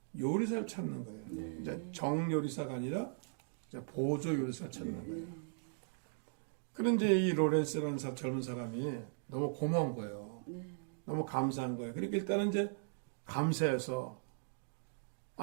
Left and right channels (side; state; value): left; silent; digital silence